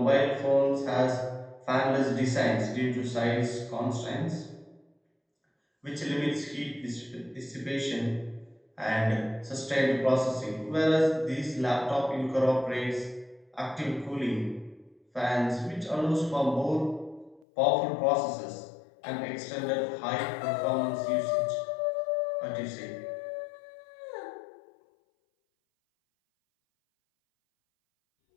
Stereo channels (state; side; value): drops out; right; at 17.4 s